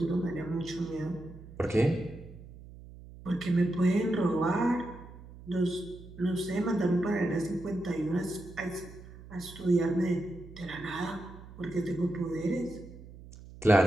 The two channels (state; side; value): noise; right; hum, 17 dB below the sound